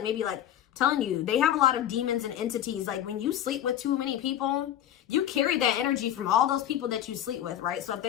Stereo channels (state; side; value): quieter; right; 11.2 dB